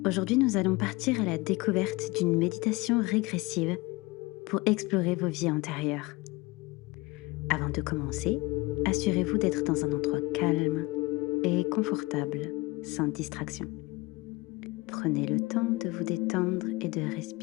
Aujourd'hui, nous allons partir à la découverte d'une méditation régressive pour explorer vos vies antérieures. Avant de commencer, assurez-vous d'être dans un endroit calme et confortable, sans distraction. Prenez le temps de vous détendre et de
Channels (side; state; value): right; quieter; 23.0 dB